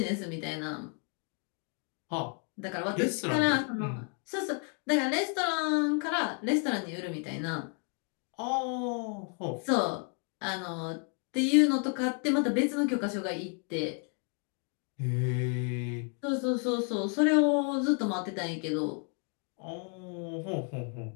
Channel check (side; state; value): right; quieter; 37.7 dB